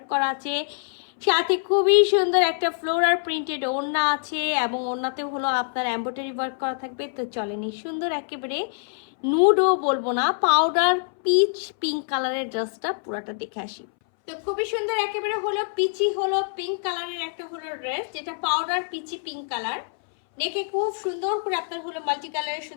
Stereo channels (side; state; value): right; silent; 62 dB below the other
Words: করা আছে, সাথে খুবই সুন্দর একটা ফ্লোরাল প্রিন্টেড ওড়না আছে, এবং ওড়নাতেও হলো আপনার এমব্রয়ডারি ওয়ার্ক করা থাকবে। তো চলেনি সুন্দর একেবারে নুডও বলবো না, পাউডার পিচ পিঙ্ক কালারের ড্রেসটা পুরাটা দেখে আসি। তো খুবই সুন্দর একেবারে হলো পিচি হলো পিঙ্ক কালারের একটা হলো ড্রেস, যেটা পাউডার পিচি পিঙ্ক কালার। নেকে খুব সুন্দর করে আপনার হলো মাল্টি কালারের